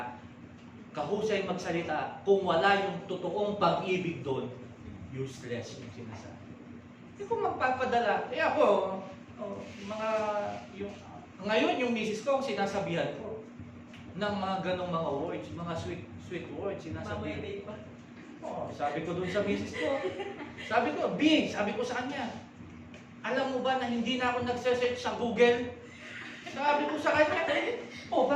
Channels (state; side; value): identical; both; correlation 1.00